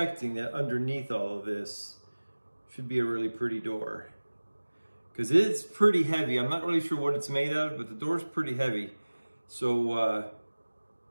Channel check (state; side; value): inverted; both; correlation -1.00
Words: that underneath all of this should be a really pretty door, because it's pretty heavy. I'm not really sure what it's made out of, but the door's pretty heavy. So